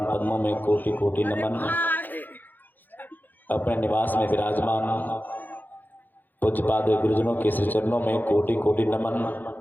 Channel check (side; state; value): right; late; 0.087 ms